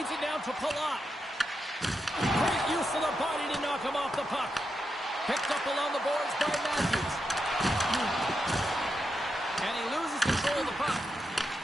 it down to Palat. Great use of the body to knock him off the puck. Picked up along the boards by Matthews. control of the puck.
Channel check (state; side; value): normal; both; correlation 0.86